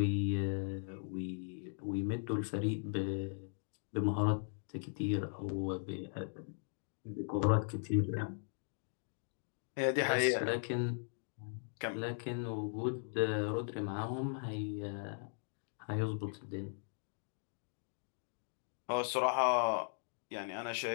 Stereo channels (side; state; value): right; silent; digital silence